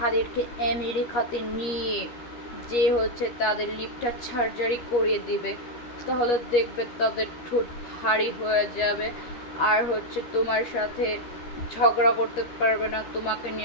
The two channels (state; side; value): late; right; 13 ms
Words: আমেরিকাতে নিয়ে যে তাদের লিপটা সার্জারি করিয়ে দিবে। তাহলে দেখবে তাদের ঠোঁট ভারী হয়ে যাবে, আর তোমার সাথে ঝগড়া করতে পারবে না, তোমাকে